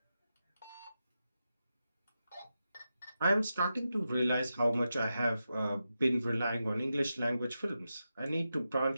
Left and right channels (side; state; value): both; inverted; correlation -0.89